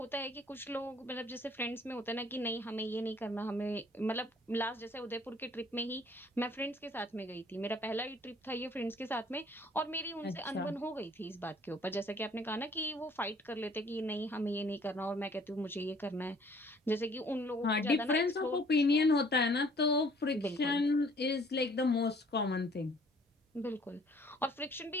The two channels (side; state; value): both; normal; correlation 0.57